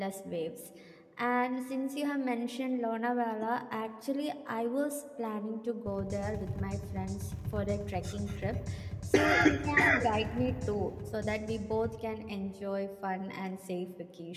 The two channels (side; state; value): both; identical; correlation 1.00